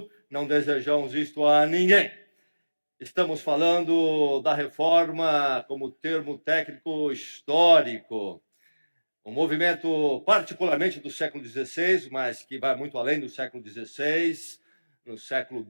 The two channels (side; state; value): both; inverted; correlation -1.00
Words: não desejamos isto a ninguém. Estamos falando da reforma como termo técnico histórico. Um movimento particularmente do século XVI, mas que vai muito além do século XVI. No século